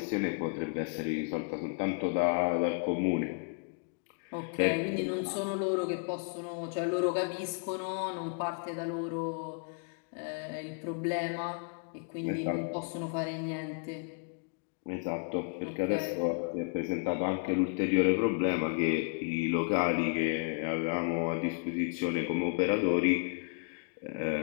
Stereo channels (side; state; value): right; quieter; 37.8 dB